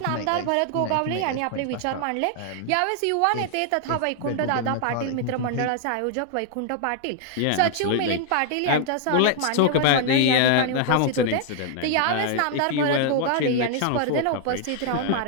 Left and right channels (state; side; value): different; both; correlation 0.00